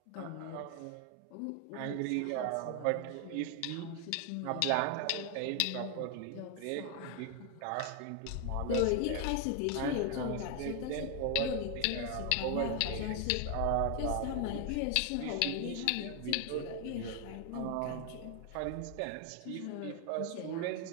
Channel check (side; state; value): both; different; correlation 0.00